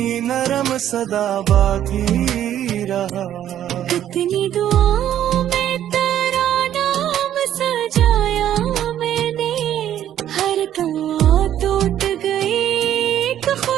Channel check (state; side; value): quieter; left; 11.1 dB